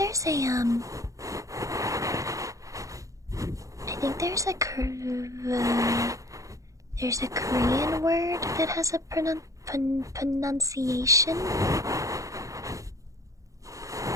a there's a Korean word that has a pronunciation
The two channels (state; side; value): late; left; 0.16 ms